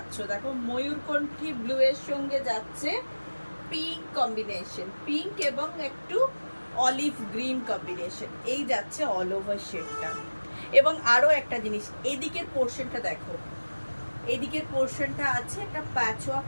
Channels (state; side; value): inverted; both; correlation -1.00